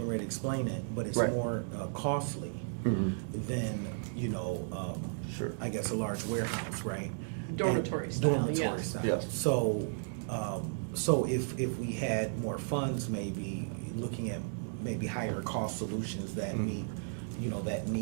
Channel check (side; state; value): left; silent; digital silence